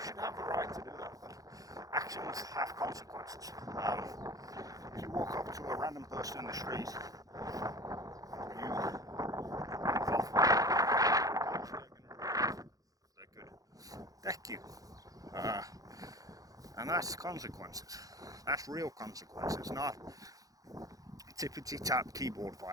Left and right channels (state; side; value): late; left; 0.17 ms